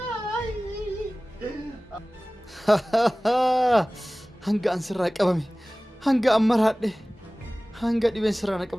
hanga an sirraa qabame hanga an maraadhe hanga dhibeen sirraa na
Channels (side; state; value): both; normal; correlation 0.98